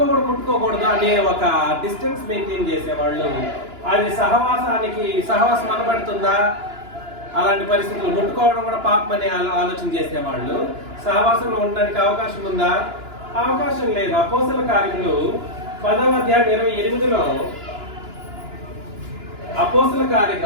అనే ఒక డిస్టెన్స్ మెయింటైన్ చేసేవాళ్ళు. అది సహవాసం అనబడుతుందా? అలాంటి పరిస్థితులు ముట్టుకోవడం కూడా పాపం అనే ఆలోచన చేసేవాళ్ళు. సహవాసంలో ఉండడానికి అవకాశం ఉందా? అవకాశం లేదు. అపోస్తల కార్యములు 10వ అధ్యాయం 28లో, అపోస్తల కార్య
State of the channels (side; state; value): left; late; 2.9 ms